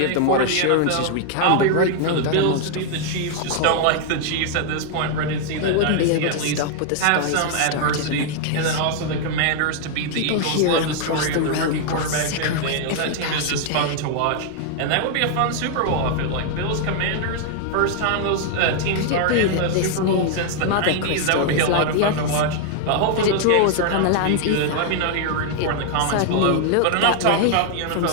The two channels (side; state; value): both; different; correlation 0.00